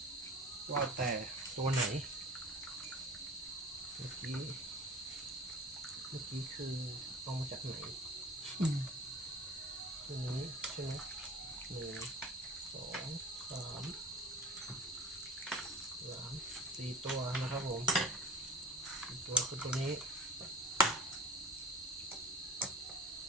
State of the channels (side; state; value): both; normal; correlation 0.38